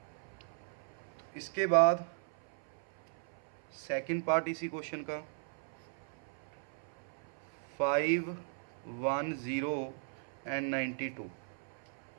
इसके बाद सेकंड पार्ट इसी क्वेश्चन का, 5, 1, 0 एंड 92।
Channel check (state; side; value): silent; left; 53 dB below the other